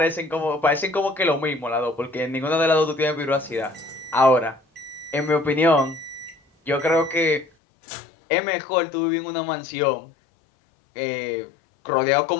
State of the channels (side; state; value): right; drops out; at 7.5 s